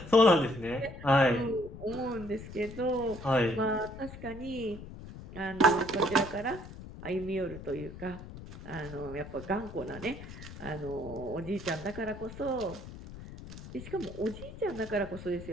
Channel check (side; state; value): left; noise; rumble, 13 dB below the sound